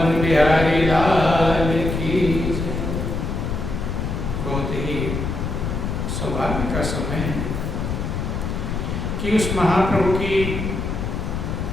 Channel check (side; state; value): left; noise; rumble, 3 dB below the sound